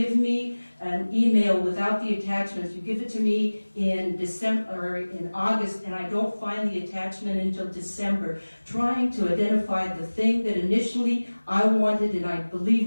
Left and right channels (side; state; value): both; inverted; correlation -1.00